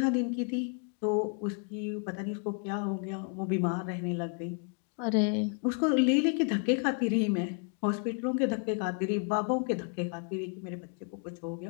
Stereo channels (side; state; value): right; quieter; 39.5 dB